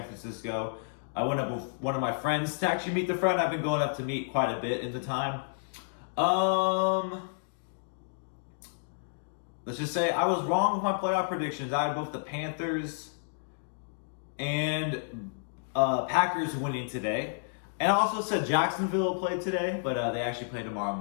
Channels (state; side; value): silent; right; digital silence